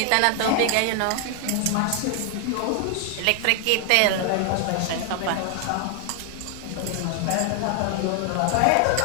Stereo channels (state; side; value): different; both; correlation 0.00